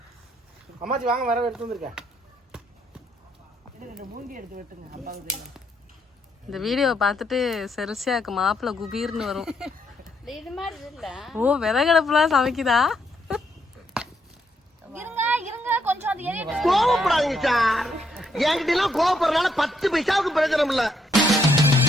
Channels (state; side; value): normal; both; correlation 0.75